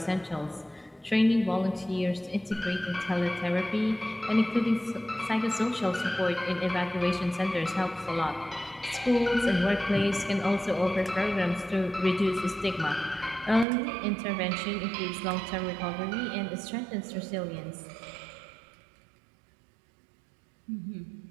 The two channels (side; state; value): left; drops out; at 13.7 s